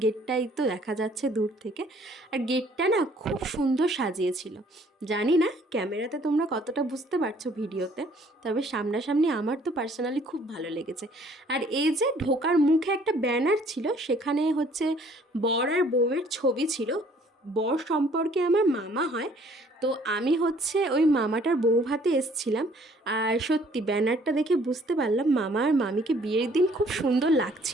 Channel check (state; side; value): normal; both; correlation 0.59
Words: গেটটাই তো দেখা যাচ্ছে দূর থেকে। আর গেটটা না খুব সুন্দর সাজিয়েছিল। জানি না ক্যামেরাতে তোমরা কতটা বুঝতে পারছো ভিডিওতে, তবে সামনাসামনি আমার তো পার্সোনালি খুব ভালো লেগেছে। আর এই যে ঢোকার মুখে একটা ব্যানার ছিল, সেখানে হচ্ছে বর আর বউয়ের ছবি ছিল। বর সম্পর্কে আমার মামা হয়, তো আমি হচ্ছে ওই মামাটার বউ ভাতে এসছিলাম। আর সত্যি ব্যানারটা দেখে বুঝতে পারলাম মামা আর মামিকে বিয়ের দিন খুব সুন্দর